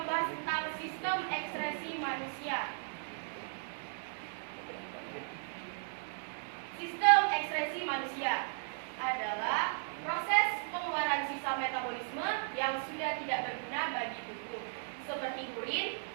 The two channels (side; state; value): left; silent; digital silence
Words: tentang sistem ekskresi manusia. Sistem ekskresi manusia adalah proses pengeluaran sisa metabolisme yang sudah tidak berguna bagi tubuh, seperti urin,